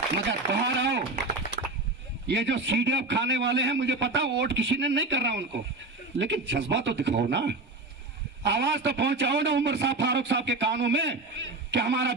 मगर बाहर आओ, ये जो सीडीएफ खाने वाले हैं, मुझे पता वोट किसी ने नहीं कर रहा उनको, लेकिन जज्बा तो दिखाओ ना, आवाज तो पहुंचाओ ना उमर साहब, फारूक साहब के कानों में कि हमारा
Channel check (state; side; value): quieter; left; 3.1 dB